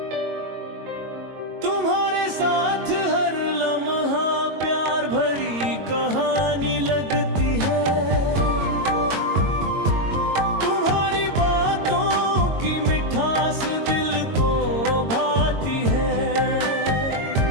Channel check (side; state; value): left; late; 22 ms